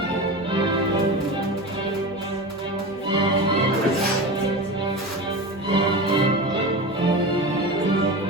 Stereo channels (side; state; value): both; normal; correlation 0.27